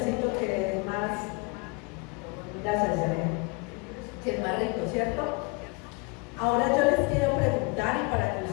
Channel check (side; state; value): right; quieter; 29.9 dB